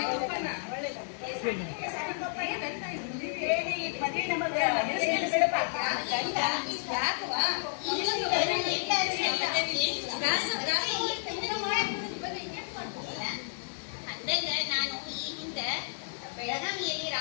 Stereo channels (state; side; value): silent; right; 57 dB below the other